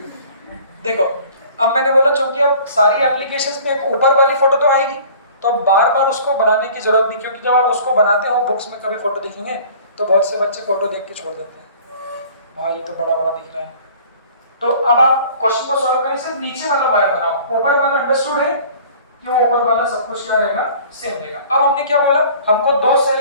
देखो अब मैंने बोला चूंकि अब सारी एप्लीकेशंस में एक ऊपर वाली फोटो तो आएगी, तो अब बार बार उसको बनाने की जरूरत नहीं, क्योंकि जब आप उसको बनाते हो बुक्स में कभी फोटो दिखेंगे तो बहुत से बच्चे फोटो देख के छोड़ देते हैं, भाई ये तो बड़ा बड़ा दिख रहा है। तो अब आप क्वेश्चन को सॉल्व करें, सिर्फ नीचे वाला वायर बनाओ, ऊपर वाला अंडरस्टूड है कि वो ऊपर वाला सब कुछ क्या रहेगा, सेम रहेगा। अब हमने क्या बोला, हमको 2 सेल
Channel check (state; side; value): inverted; both; correlation -0.48